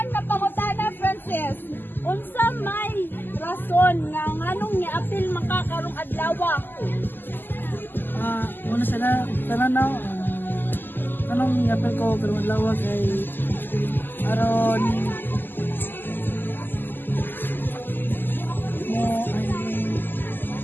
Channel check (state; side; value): late; right; 0.092 ms